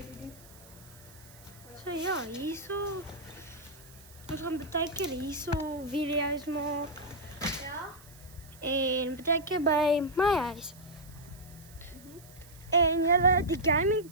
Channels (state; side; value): noise; right; hiss, 22 dB below the sound